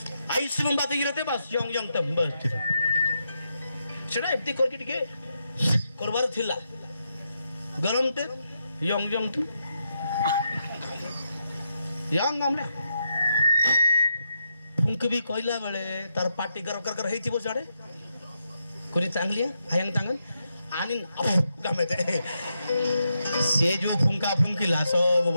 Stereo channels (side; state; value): both; inverted; correlation -0.83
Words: Ayush में बात गिरते बस young तंबल सेटा एप्ती करके टिके करबार थिला गरम ते यंग तू यंग हमले फुंक भी कहला बेले तार पार्टी कर हेतिबो साडे कोनी चांगली आयंग तांगन आनिन गमे ते से जो फुंका फुंकिला सब